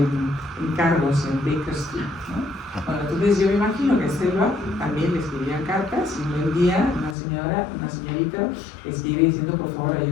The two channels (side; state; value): right; drops out; at 7.2 s